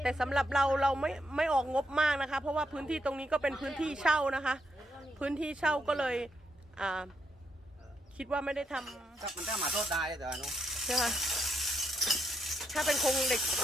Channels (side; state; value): both; normal; correlation 0.79